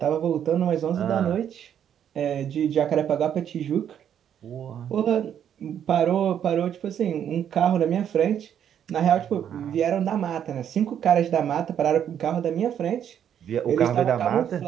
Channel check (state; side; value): quieter; left; 9.3 dB